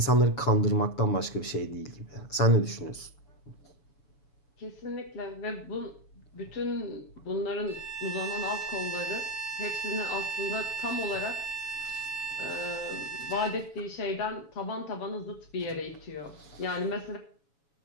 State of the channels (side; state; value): right; late; 7.1 ms